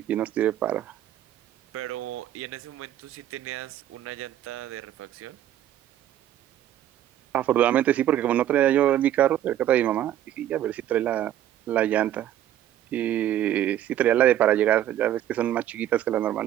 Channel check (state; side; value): quieter; left; 11.9 dB